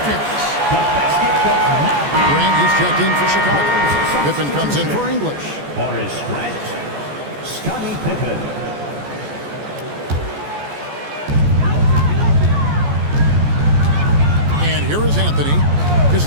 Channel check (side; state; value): left; late; 14 ms